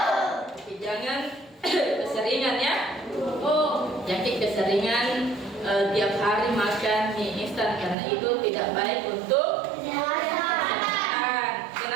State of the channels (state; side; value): drops out; left; at 8.0 s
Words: Jangan keseringan ya. Jadi keseringan tiap hari makan mie instan karena itu tidak baik untuk kesehatan.